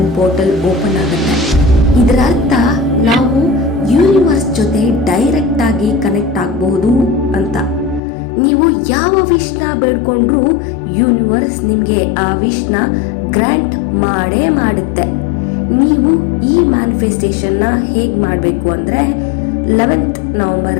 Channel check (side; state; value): right; drops out; at 8.0 s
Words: ಪೋರ್ಟಲ್ ಓಪನ್ ಆಗುತ್ತೆ. ಇದರ ಅರ್ಥ ನಾವು ಯೂನಿವರ್ಸ್ ಜೊತೆ ಡೈರೆಕ್ಟ್ ಆಗಿ ಕನೆಕ್ಟ್ ಆಗಬಹುದು ಅಂತ. ನೀವು ಯಾವ ವಿಷ್ನ ಬೇಡ್ಕೊಂಡ್ರೂ ಯೂನಿವರ್ಸ್ ನಿಮಗೆ ಆ ವಿಷ್ನ ಗ್ರಾಂಟ್ ಮಾಡೇ ಮಾಡುತ್ತೆ. ನೀವು ಈ ಮ್ಯಾನಿಫೆಸ್ಟೇಷನ್ನ ಹೇಗೆ ಮಾಡಬೇಕು ಅಂದರೆ 11th